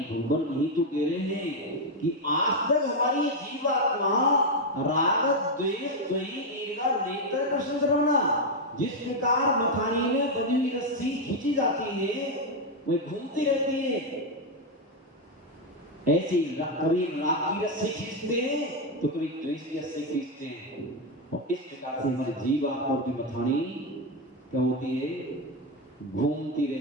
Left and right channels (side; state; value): both; normal; correlation 0.05